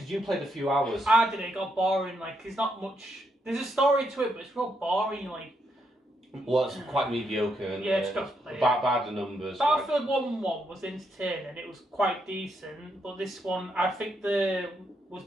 you played a few hours. I did it. It got boring. Like there's not much. There's a story to it, but it's real boring. Like. Well, it's quite mediocre. And, yeah, it's got to play. Bad the numbers. Battlefield 1 was entertaining. It was quite decent, but this one I think was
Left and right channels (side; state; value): both; normal; correlation 0.79